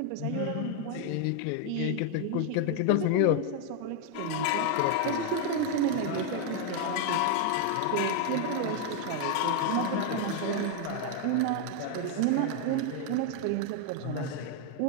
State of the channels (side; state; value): both; different; correlation 0.01